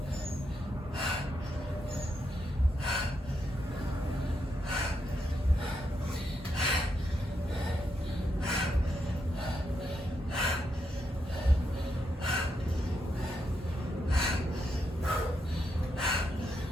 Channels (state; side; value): normal; both; correlation 0.81